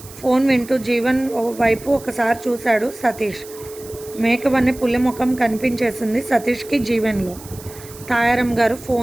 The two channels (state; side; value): noise; right; hiss, 18 dB below the sound